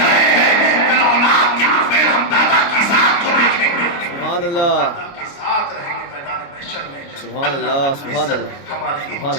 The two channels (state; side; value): late; right; 29 ms